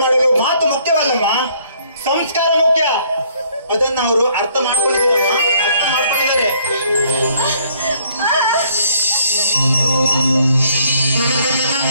ಮಾಡಲು ಮಾತು ಮುಖ್ಯವಲ್ಲಮ್ಮ, ಸಂಸ್ಕಾರ ಮುಖ್ಯ. ಅದನ್ನ ಅವರು ಅರ್ಥ ಮಾಡ್ಕೊಂಡಿದ್ದೀರಮ್ಮ, ಅರ್ಥ ಮಾಡ್ಕೊಂಡಿದ್ದಾರೆ.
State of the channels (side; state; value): both; inverted; correlation -0.64